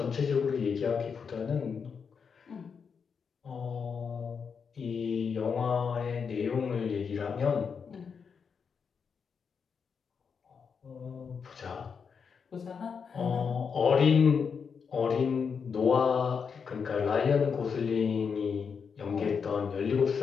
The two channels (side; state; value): right; quieter; 6.2 dB